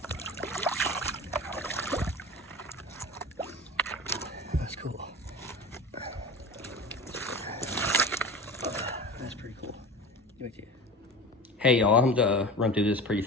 That's cool. That's pretty cool. Get back to you. Hey y'all, I'm gonna run through this pretty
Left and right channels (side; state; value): both; normal; correlation 0.33